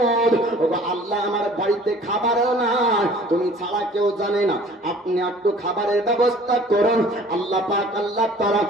ওগো আল্লাহ, আমার বাড়িতে খাবারও নাই, তুমি ছাড়া কেউ জানে না, আপনি একটু খাবারের ব্যবস্থা করুন। আল্লাহ পাক, আল্লাহ তাআলা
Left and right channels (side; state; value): both; normal; correlation 0.50